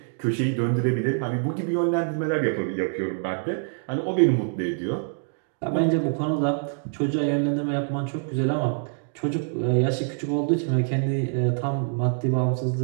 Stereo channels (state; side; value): silent; left; digital silence